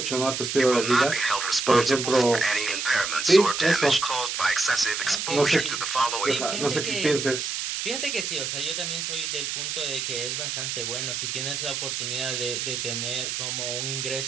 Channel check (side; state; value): right; noise; hiss, 3 dB below the sound